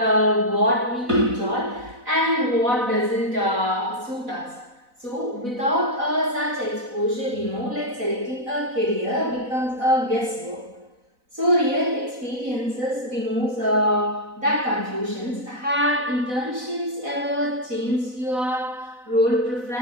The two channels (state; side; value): late; left; 4.0 ms